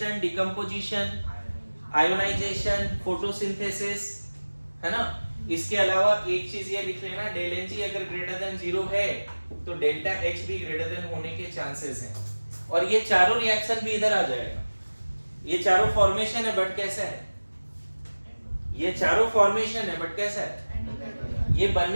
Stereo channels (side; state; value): both; inverted; correlation -1.00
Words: decomposition, ionization, photosynthesis, है ना। इसके अलावा एक चीज ये लिख लेना, डेल Ng अगर ग्रेटर देन 0 है तो डेल्टा H भी ग्रेटर देन होने के चांसेस हैं। और ये चारों रिएक्शन भी इधर आ जाएगा। ये चारों फॉर्मेशन है बट कैसा है, ये चारों फॉर्मेशन है बट कैसा है, ये